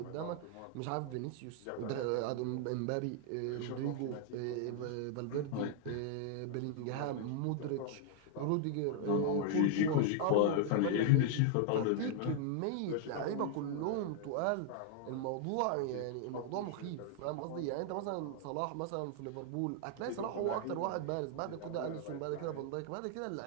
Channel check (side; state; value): both; different; correlation 0.00